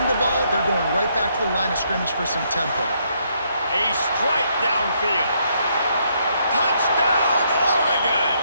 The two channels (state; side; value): inverted; both; correlation -0.73